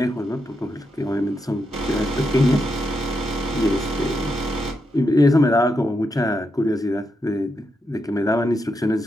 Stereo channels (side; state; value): both; normal; correlation 0.83